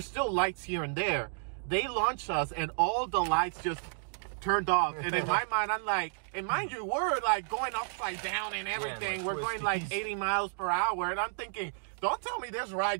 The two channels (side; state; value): left; silent; digital silence